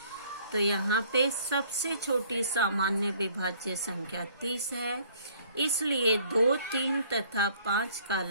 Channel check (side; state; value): both; inverted; correlation -0.58